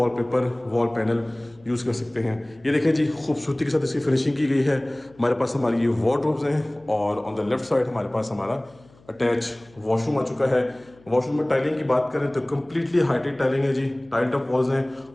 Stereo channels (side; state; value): left; noise; hum, 28 dB below the sound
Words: वॉल पैनल यूज़ कर सकते हैं। ये देखें जी खूबसूरती के साथ इसकी फिनिशिंग की गई है। हमारे पास हमारी ये वार्डरोब्स हैं और ऑन द लेफ्ट साइड हमारे पास हमारा अटैच वॉशरूम आ चुका है। वॉशरूम में टाइलिंग की बात करें तो कम्प्लीटली हाइटेड टाइलिंग है जी, टाइल्ड अप वॉल्स हैं